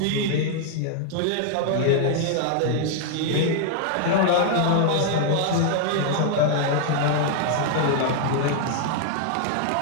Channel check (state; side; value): different; both; correlation 0.00